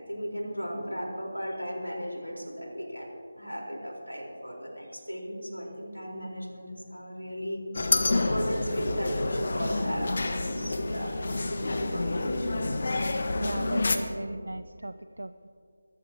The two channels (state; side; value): inverted; both; correlation -0.96